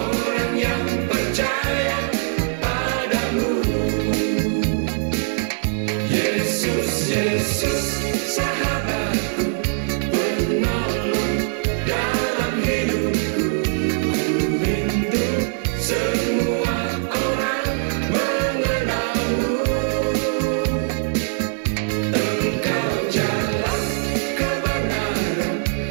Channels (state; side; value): silent; left; digital silence